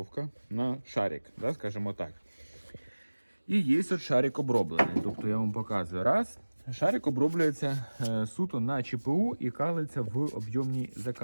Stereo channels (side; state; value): both; inverted; correlation -1.00